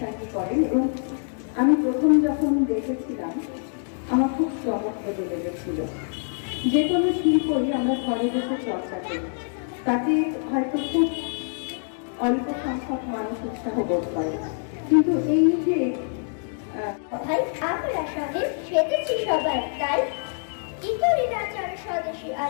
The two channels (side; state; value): right; silent; 61 dB below the other